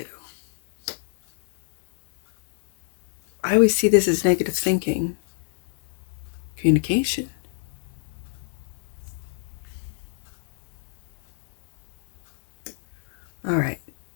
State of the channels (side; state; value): right; silent; digital silence